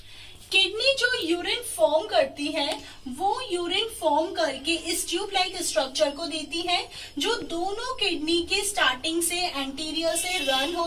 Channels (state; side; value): identical; both; correlation 1.00